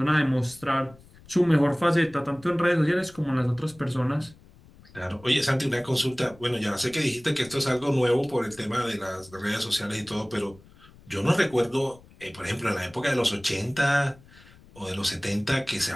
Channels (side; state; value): left; noise; rumble, 24 dB below the sound